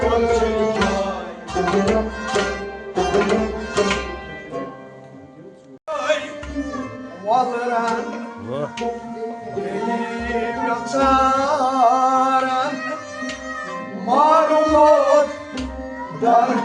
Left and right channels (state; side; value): identical; both; correlation 1.00